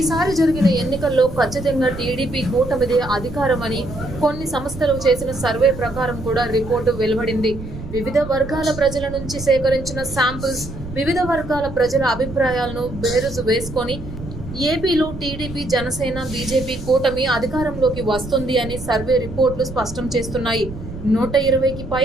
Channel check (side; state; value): right; noise; rumble, 11 dB below the sound